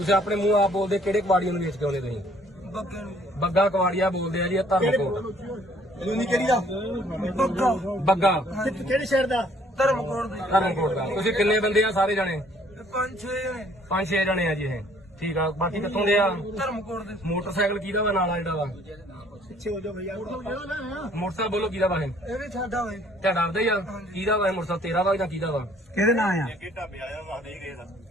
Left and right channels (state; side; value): normal; both; correlation 0.60